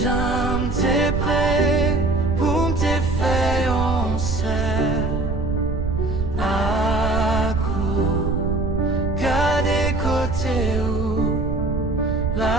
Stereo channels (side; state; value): right; noise; rumble, 3 dB below the sound